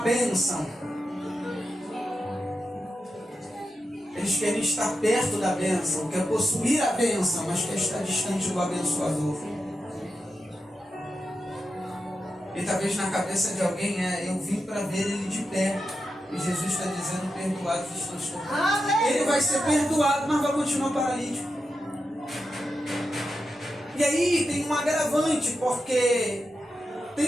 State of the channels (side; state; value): both; normal; correlation 0.88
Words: Eles querem estar perto da bênção, quer possuir a bênção, mas quer estar distante do abençoador. E talvez na cabeça de alguém eu vim para ver ele de pé. E Jesus está dizendo, perdoados estão os teus pecados. Ele vai ser perdoado, mas vai continuar paralítico. E aí tem um agravante, porque